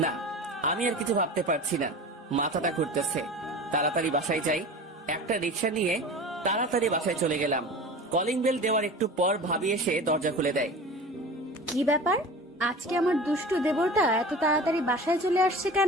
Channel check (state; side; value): normal; both; correlation 0.35